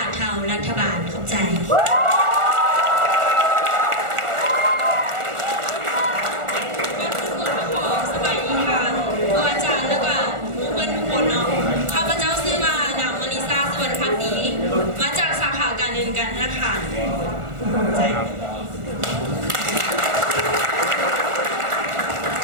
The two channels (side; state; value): left; late; 1.4 ms